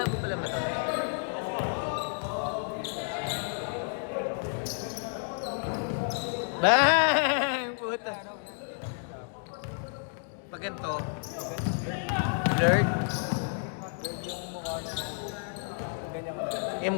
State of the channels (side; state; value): right; silent; 57 dB below the other